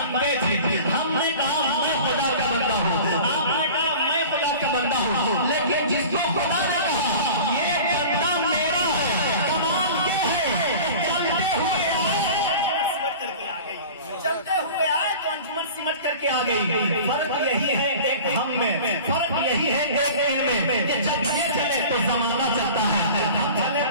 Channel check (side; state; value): both; inverted; correlation -0.39